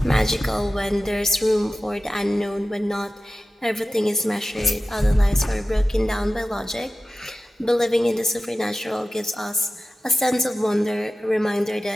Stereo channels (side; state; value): both; normal; correlation 0.95